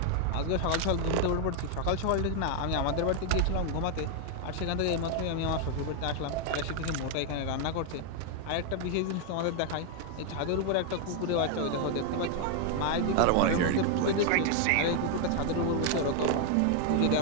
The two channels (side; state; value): both; different; correlation 0.00